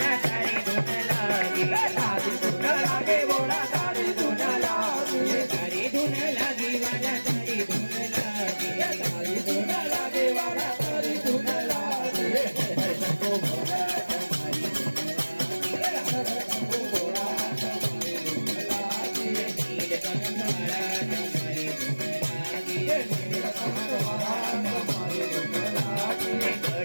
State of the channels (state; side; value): inverted; both; correlation -1.00